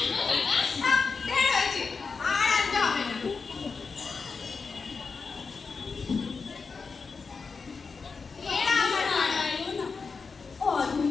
কাকা ঢের হয়েছে, আর আনতে হবে না। এরা আমার নারায়ণ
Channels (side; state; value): right; quieter; 4.9 dB